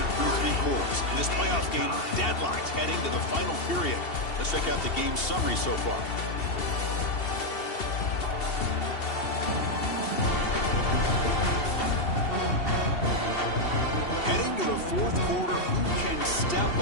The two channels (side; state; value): right; late; 2.7 ms